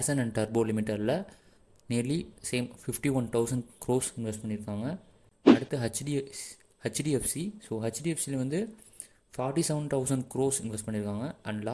அண்ட் டர்போ லிமிட்டடில் நியர்லி சேம் 51,000 crores இன்வெஸ்ட் பண்ணியிருக்காங்க. அடுத்து ஹெச்டிஎஃப்சி. ஸோ ஹெச்டிஎஃப்சியில் வந்து 47,000 crores இன்வெஸ்ட் பண்ணியிருக்காங்க. அண்ட்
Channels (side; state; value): both; identical; correlation 1.00